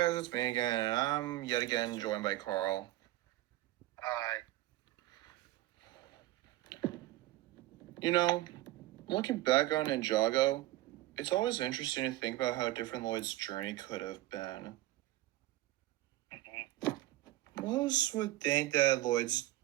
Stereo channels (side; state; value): left; quieter; 16.5 dB